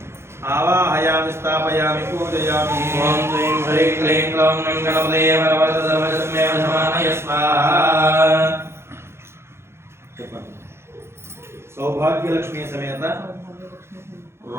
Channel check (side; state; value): left; late; 0.12 ms